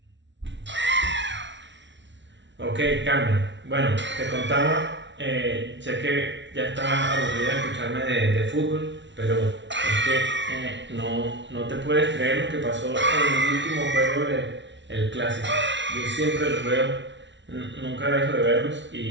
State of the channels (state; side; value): late; left; 0.53 ms